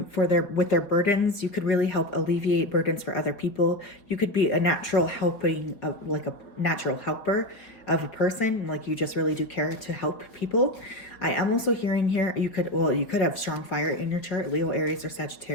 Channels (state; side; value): late; right; 4.7 ms